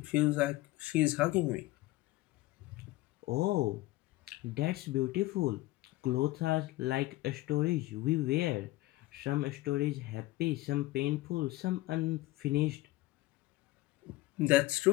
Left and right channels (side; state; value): right; quieter; 18.4 dB